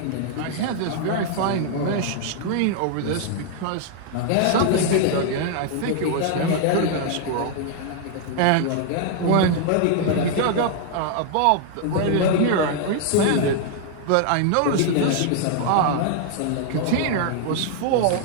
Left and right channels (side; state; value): both; different; correlation 0.00